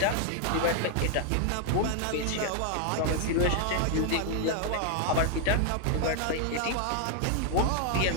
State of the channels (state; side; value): different; both; correlation 0.00